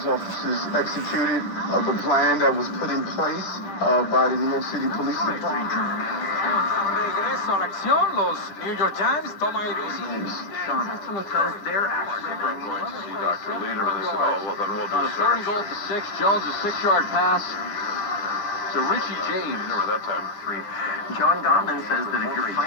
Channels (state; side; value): late; right; 10 ms